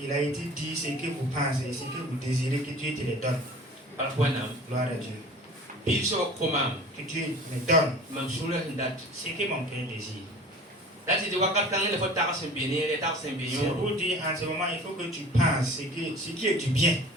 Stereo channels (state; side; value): normal; both; correlation 0.42